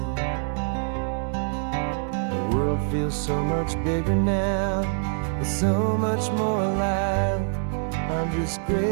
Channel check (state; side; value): silent; left; 58 dB below the other